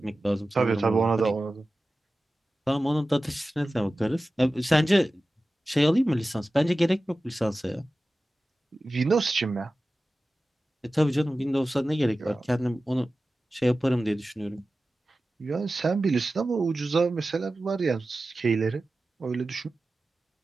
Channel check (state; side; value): normal; both; correlation 0.95